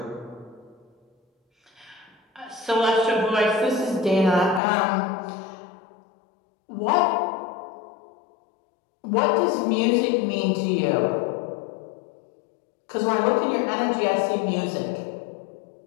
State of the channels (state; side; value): drops out; right; at 4.6 s